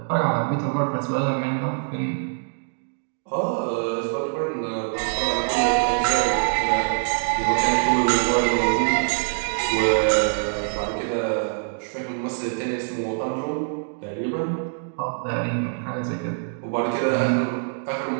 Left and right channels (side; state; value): left; silent; digital silence